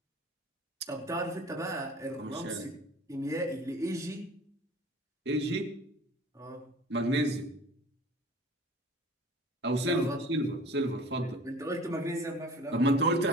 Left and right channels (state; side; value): normal; both; correlation 0.45